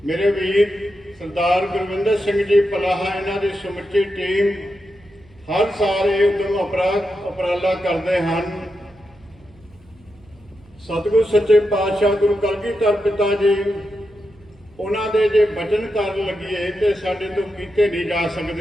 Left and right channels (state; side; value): noise; right; hum, 28 dB below the sound